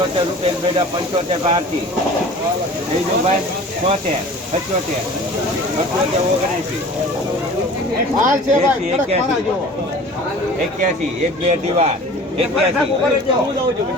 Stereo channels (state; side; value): normal; both; correlation 0.42